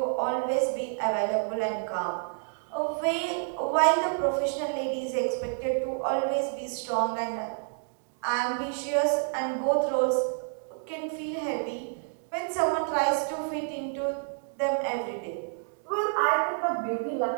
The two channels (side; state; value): left; silent; digital silence